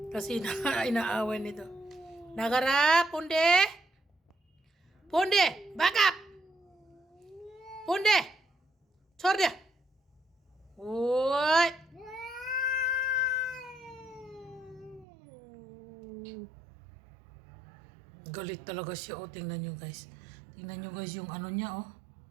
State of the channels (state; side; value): drops out; left; at 15.1 s